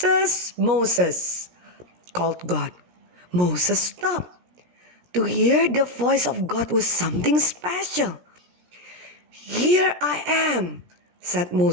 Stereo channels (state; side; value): late; left; 17 ms